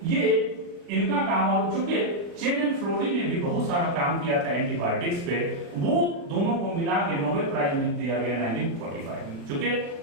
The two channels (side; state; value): left; late; 37 ms